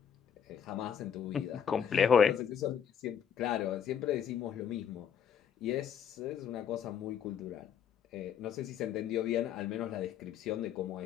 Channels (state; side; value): quieter; right; 8.1 dB